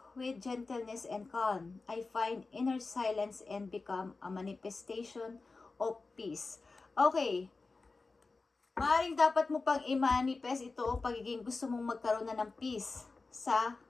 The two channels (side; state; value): right; quieter; 3.9 dB